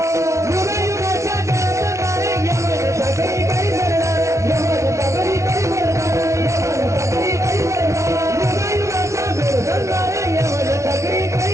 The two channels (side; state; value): left; late; 0.14 ms